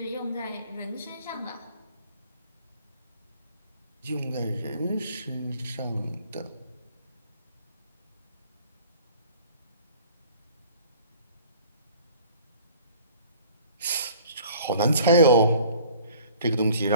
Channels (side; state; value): both; inverted; correlation -0.50